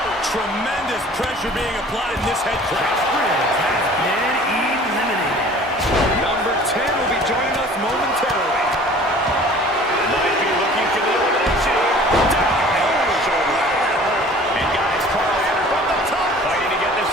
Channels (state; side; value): normal; both; correlation 0.48